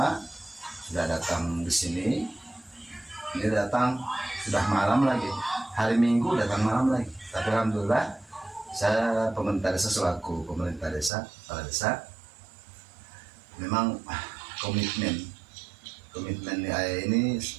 sudah datang di sini. Ini datang sudah malam lagi, hari Minggu datang malam lagi. Tapi alhamdulillah saya pemerintah desa selaku pemerintah desa, kepala desa, memang komitmen ini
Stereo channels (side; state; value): left; drops out; at 11.1 s